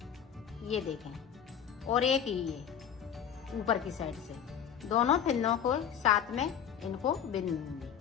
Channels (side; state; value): right; quieter; 8.5 dB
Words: ये देखें, और एक ये ऊपर की साइड से, दोनों फंदों को साथ में इनको बिन दूंगी